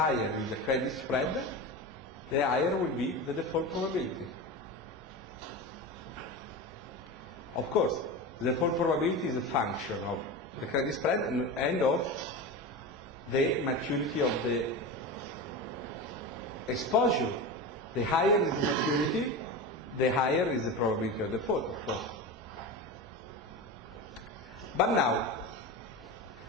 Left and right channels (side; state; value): both; normal; correlation 0.25